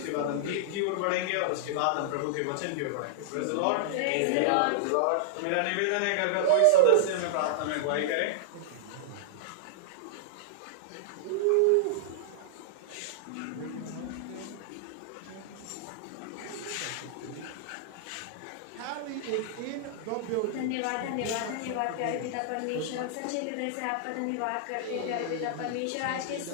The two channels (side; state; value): both; different; correlation -0.01